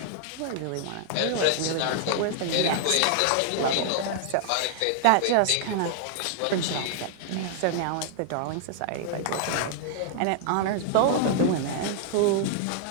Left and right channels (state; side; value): different; both; correlation -0.01